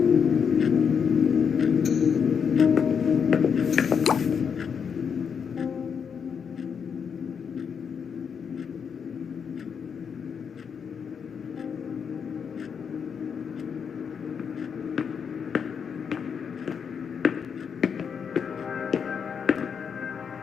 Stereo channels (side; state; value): right; quieter; 6.8 dB